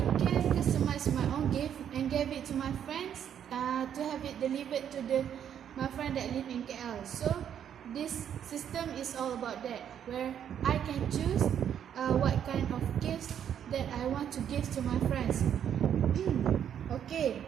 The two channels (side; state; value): left; quieter; 9.2 dB